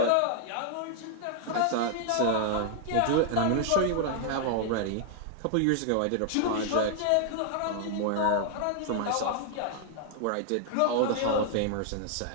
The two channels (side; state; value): both; different; correlation 0.00